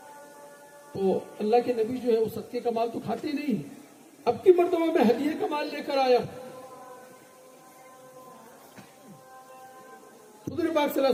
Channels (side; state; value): both; identical; correlation 1.00